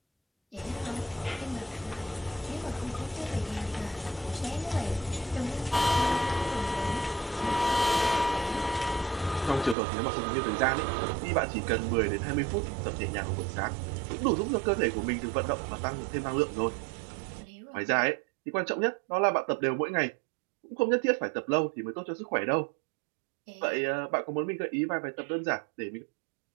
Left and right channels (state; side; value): drops out; left; at 9.8 s